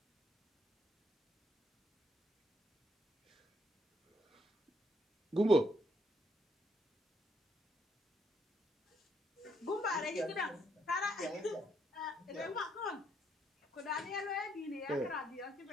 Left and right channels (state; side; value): normal; both; correlation 0.73